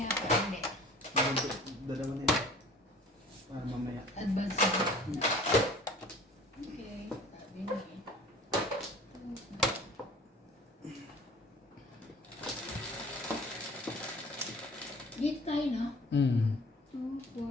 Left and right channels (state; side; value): normal; both; correlation 0.47